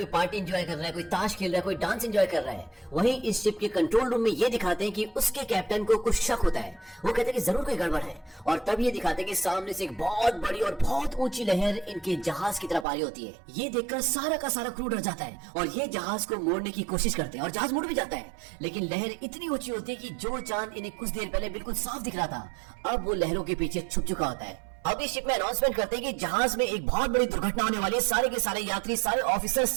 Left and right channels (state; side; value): drops out; left; at 12.9 s